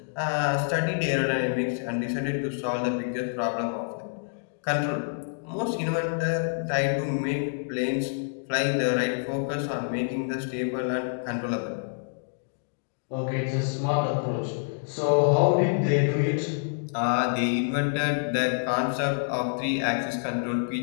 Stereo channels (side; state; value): right; silent; digital silence